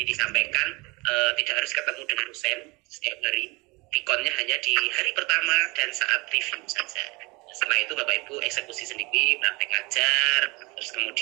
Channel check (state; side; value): quieter; left; 25.2 dB